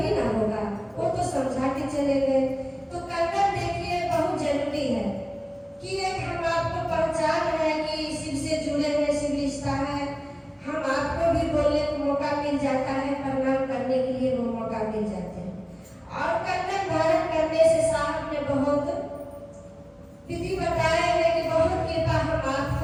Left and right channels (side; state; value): both; identical; correlation 1.00